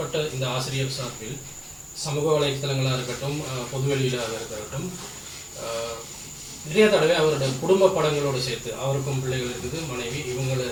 இந்த ஆசிரியர் சார்பில் சமூக வலைத்தளங்களாக இருக்கட்டும், பொதுவெளியிலாக இருக்கட்டும், நிறைய தடவை அவருடைய குடும்ப படங்களோடு சேர்த்து அவருக்கும் பிள்ளைகள் இருக்குது, மனைவி, இவங்களை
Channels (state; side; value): identical; both; correlation 1.00